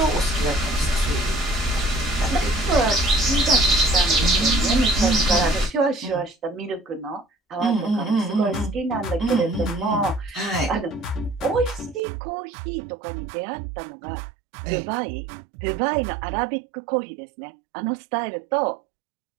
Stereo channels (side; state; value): left; drops out; at 12.0 s